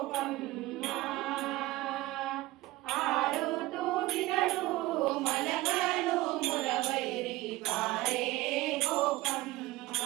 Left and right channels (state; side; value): quieter; left; 18.5 dB